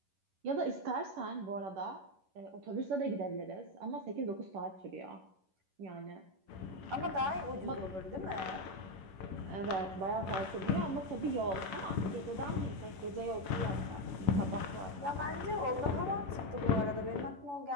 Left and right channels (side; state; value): left; late; 11 ms